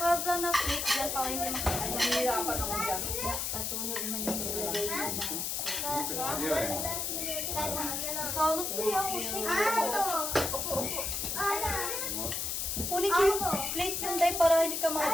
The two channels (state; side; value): noise; left; hiss, 1 dB below the sound